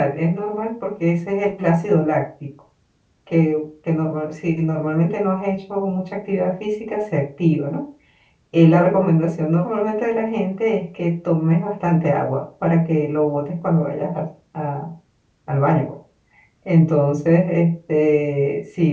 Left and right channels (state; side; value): identical; both; correlation 1.00